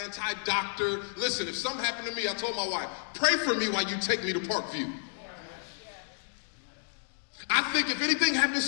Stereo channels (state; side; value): silent; right; digital silence